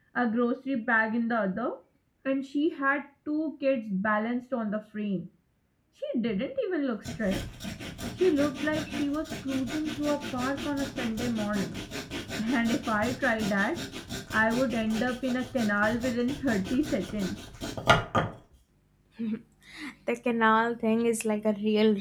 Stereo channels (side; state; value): both; identical; correlation 1.00